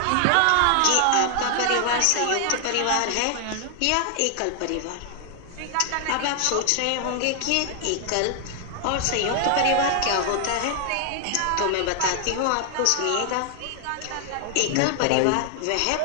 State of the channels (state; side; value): different; both; correlation 0.00